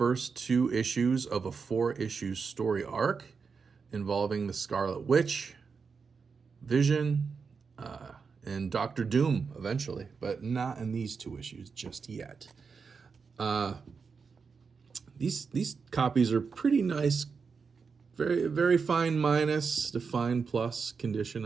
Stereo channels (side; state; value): left; quieter; 5.4 dB